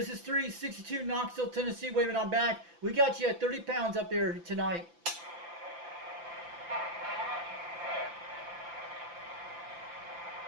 is 362 Knoxville, Tennessee, waving on back. We got you at 30 pounds up there tonight.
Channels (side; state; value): left; late; 5.8 ms